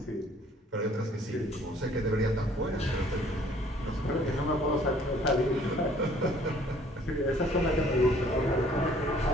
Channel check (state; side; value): normal; both; correlation 0.58